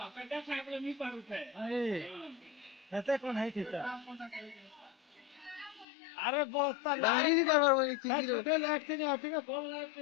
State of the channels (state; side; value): drops out; right; at 5.9 s